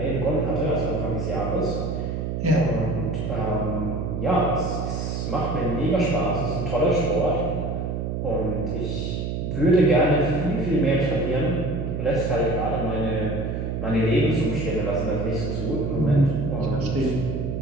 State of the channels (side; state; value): right; noise; hum, 2 dB below the sound